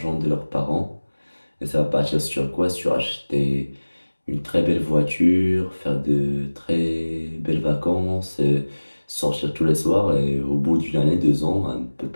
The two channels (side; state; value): both; inverted; correlation -1.00